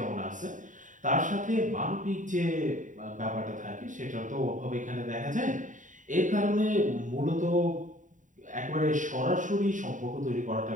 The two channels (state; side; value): late; left; 0.37 ms